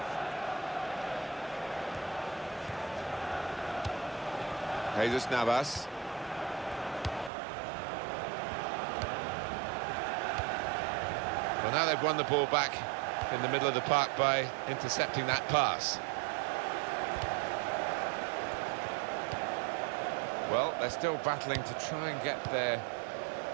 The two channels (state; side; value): drops out; left; at 7.3 s